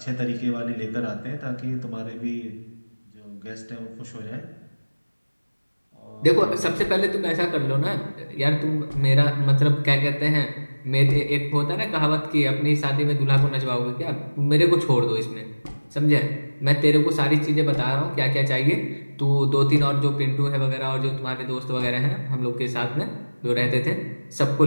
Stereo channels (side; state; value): both; inverted; correlation -1.00